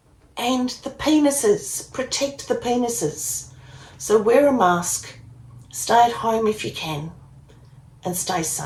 and the penises. Protect the penises. So wear a mask, stay at home if you can, and stay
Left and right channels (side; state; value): both; identical; correlation 1.00